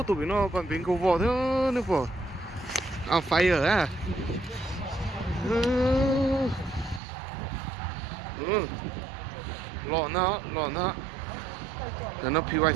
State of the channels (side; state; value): left; drops out; at 7.0 s